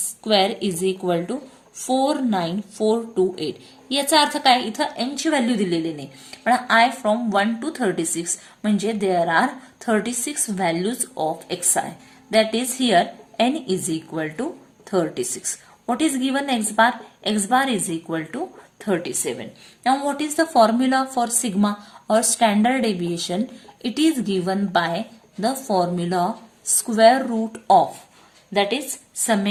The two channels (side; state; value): both; identical; correlation 1.00